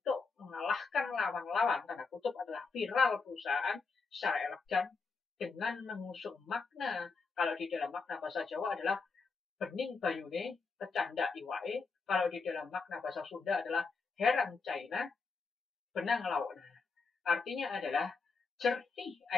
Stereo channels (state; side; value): quieter; right; 4.6 dB